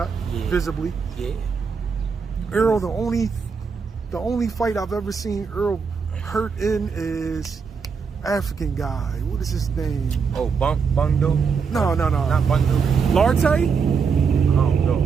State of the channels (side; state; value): left; quieter; 5.7 dB